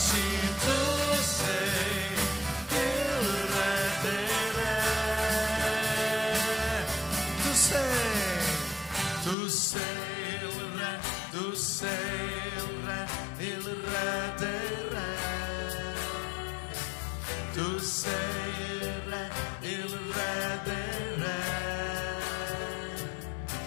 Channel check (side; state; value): right; drops out; at 9.3 s